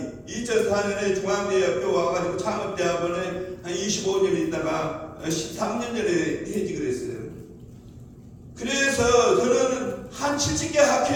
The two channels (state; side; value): identical; both; correlation 1.00